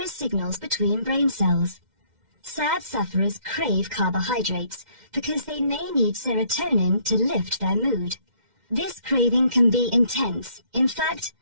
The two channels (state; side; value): late; left; 2.1 ms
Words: signals between brain cells. SAD sufferers crave carbohydrates because they may need serotonin to lift their mood. This craving can be intense, in fact,